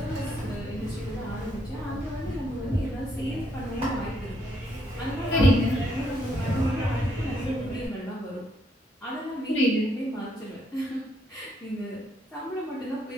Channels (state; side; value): normal; both; correlation 0.74